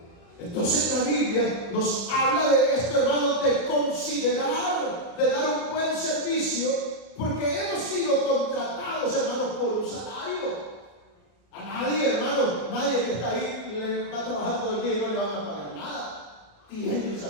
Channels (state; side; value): late; right; 34 ms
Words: Entonces la Biblia nos habla de esto, hermano, de considerar, de dar un buen servicio, porque hemos sido contratados, hermano, por un salario. A nadie, hermano, nadie que está ahí le va a trabajar todo el día y no le van a pagar nada. Tiene un